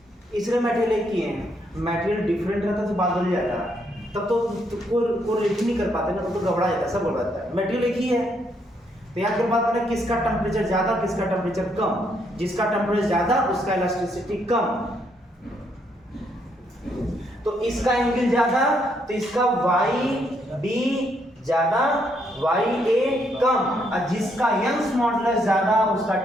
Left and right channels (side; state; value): both; normal; correlation 0.74